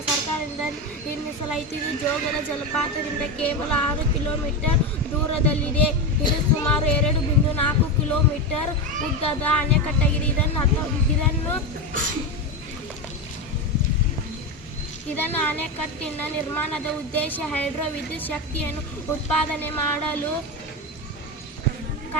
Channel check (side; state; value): both; normal; correlation 0.16